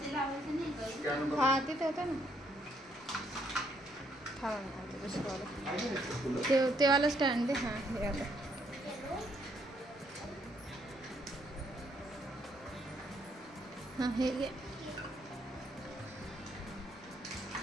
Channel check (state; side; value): normal; both; correlation 0.71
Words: लावायची नाही का? हा तिथे होतं ना. हा दुसरं ते वाला स्टँड दे. हां हे आलं. हां हे घे.